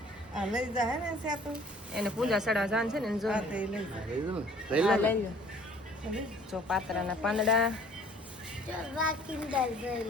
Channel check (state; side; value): normal; both; correlation 0.54